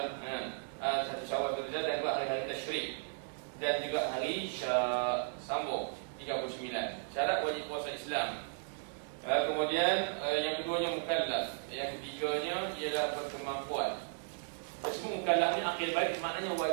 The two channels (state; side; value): silent; left; digital silence